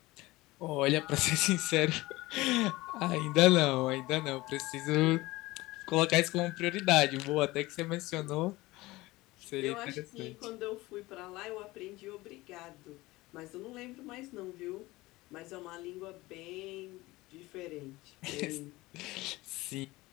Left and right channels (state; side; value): quieter; right; 19.9 dB